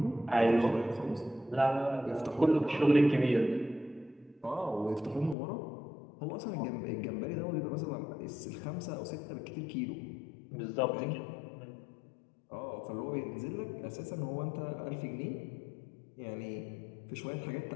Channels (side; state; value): right; drops out; at 5.4 s